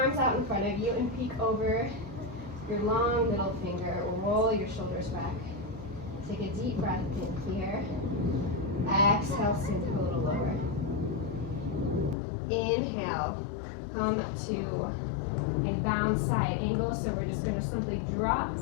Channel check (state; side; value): drops out; right; at 12.2 s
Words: out in front of you and peek over your long middle finger. Roll your shoulders back. Take a deep breath in here. Exhale, sink a little lower. Inhale, come to a bound side angle. So we're just going to simply drop